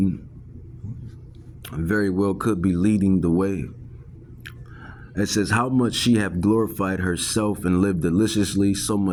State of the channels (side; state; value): both; identical; correlation 1.00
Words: very well could be leading the way. It says, how much she hath glorified herself and lived deliciously, so